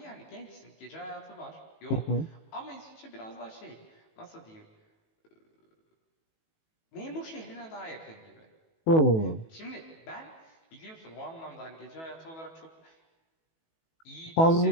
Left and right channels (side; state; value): right; late; 18 ms